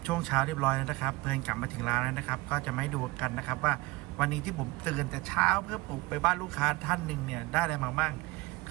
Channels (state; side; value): quieter; left; 21.4 dB